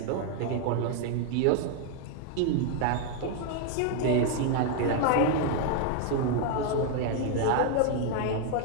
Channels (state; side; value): different; both; correlation 0.00